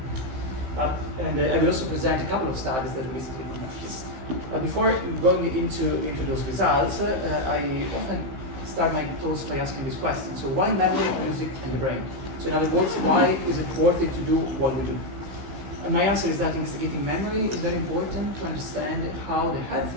that. And I will also present a couple of studies that we recently conducted. Before going into those results, I often start my talks by asking this question. So why memory, music, and the brain? So in other words, why is it worth it to do what we do? And my answer is that investigating memory is very important to understand how the healthy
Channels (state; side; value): late; left; 15 ms